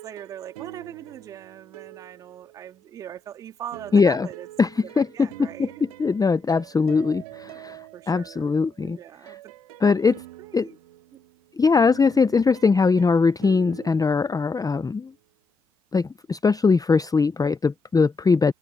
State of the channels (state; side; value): quieter; right; 4.2 dB